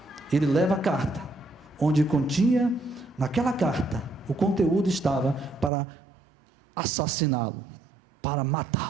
Ele leva a carta, onde continha, naquela carta, o conteúdo estava para assassiná-lo, para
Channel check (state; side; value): drops out; left; at 5.7 s